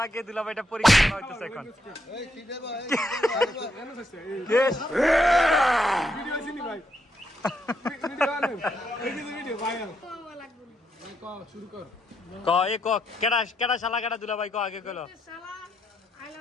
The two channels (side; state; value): both; normal; correlation 0.78